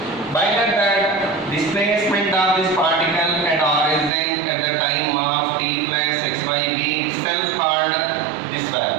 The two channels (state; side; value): drops out; left; at 4.1 s